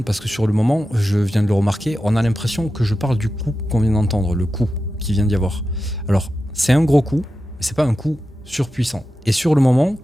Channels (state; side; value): normal; both; correlation 0.91